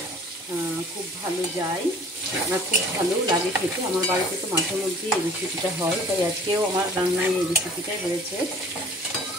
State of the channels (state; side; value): normal; both; correlation 0.50